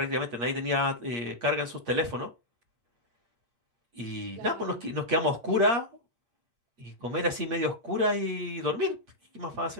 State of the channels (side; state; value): left; late; 8.5 ms